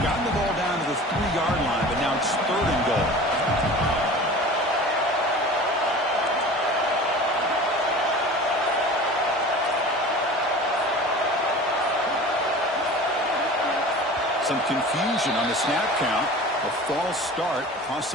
gotten the ball down to the 3-yard line, but now it's 3rd and goal. Some confusion on the snap count. A false start cost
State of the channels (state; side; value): normal; both; correlation 0.38